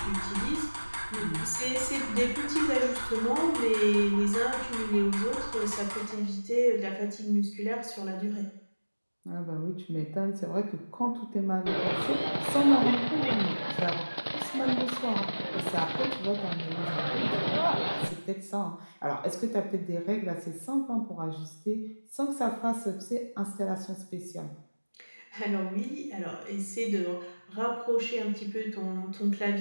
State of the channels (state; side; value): inverted; both; correlation -1.00